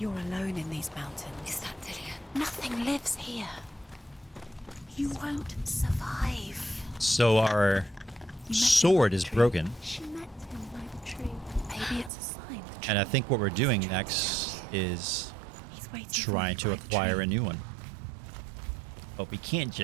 alone in these mountains. Is that Dillian? Nothing lives here. You won't survive. So our sword is broken. She met him by the tree. Maybe it's a sign. And I think what we're doing next is trying to acquire a new one. But we can't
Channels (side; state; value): left; drops out; at 12.1 s